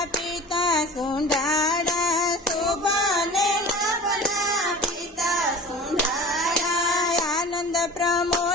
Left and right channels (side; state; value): both; normal; correlation 0.38